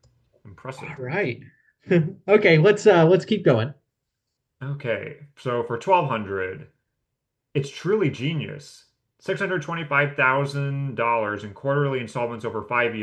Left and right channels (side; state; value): both; identical; correlation 1.00